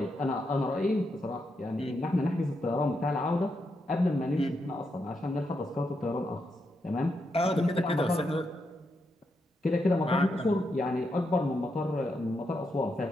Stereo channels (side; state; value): both; normal; correlation 0.83